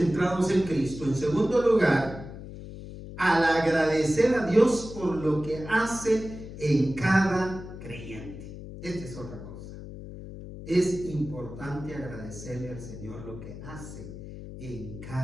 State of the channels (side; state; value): left; noise; hum, 12 dB below the sound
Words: en Cristo. En segundo lugar, al agradecer a Dios por lo que hace en cada creyente. Esta es otra cosa. Es importante agradecerle al Señor lo que hace en